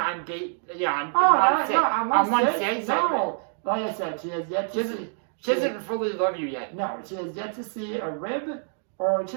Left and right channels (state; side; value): silent; left; digital silence